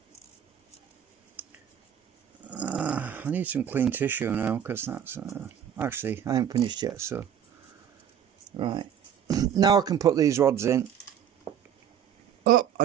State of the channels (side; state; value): left; quieter; 9.0 dB